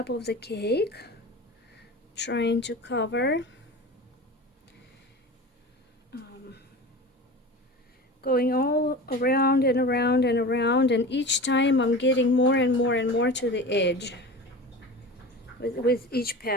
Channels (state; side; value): normal; both; correlation 0.32